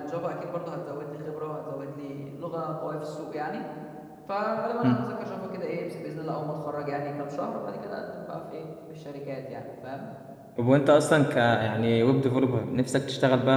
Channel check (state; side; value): identical; both; correlation 1.00